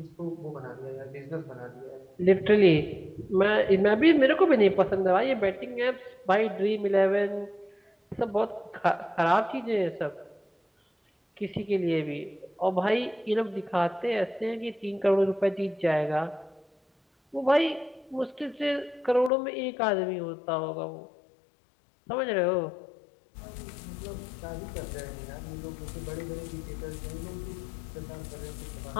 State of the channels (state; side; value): drops out; right; at 19.3 s